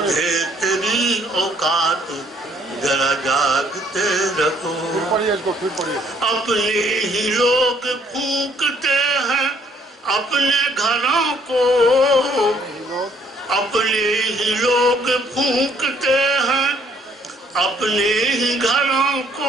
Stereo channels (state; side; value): normal; both; correlation 0.64